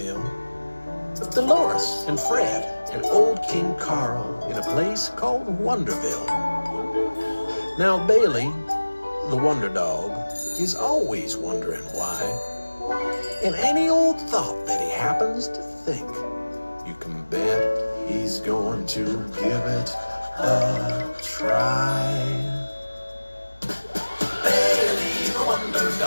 with Dolores and Fred and old King Carl in a place called Wonderville. Now Bailey, the Wonder Dog, is always wondering why. And any old thought that he happens to think, you can bet he's going to give it a try. Bailey the Wonder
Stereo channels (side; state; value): both; inverted; correlation -1.00